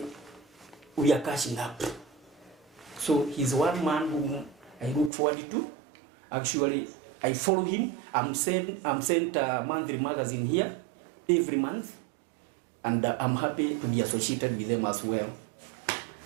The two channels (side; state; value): left; drops out; at 5.1 s